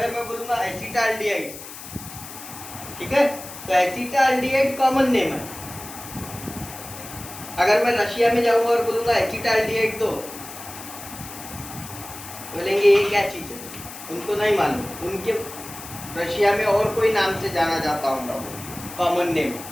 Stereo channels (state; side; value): noise; left; hiss, 13 dB below the sound